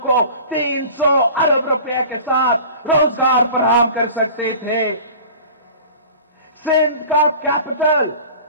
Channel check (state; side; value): inverted; both; correlation -0.42